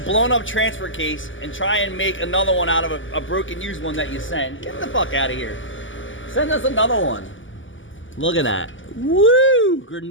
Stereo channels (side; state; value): right; late; 0.56 ms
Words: up transfer case and try and make another one out of a broken used one that you sent? Get the fuck out of here. Send us another one. Look at that. Woo!